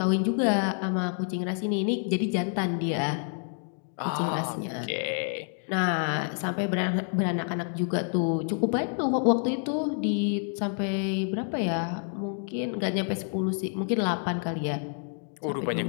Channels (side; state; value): right; silent; 57 dB below the other